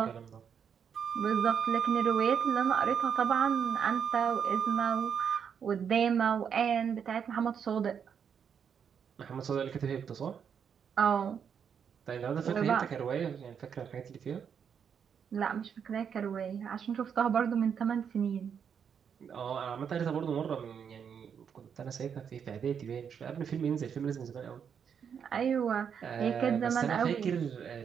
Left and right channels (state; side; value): quieter; left; 7.4 dB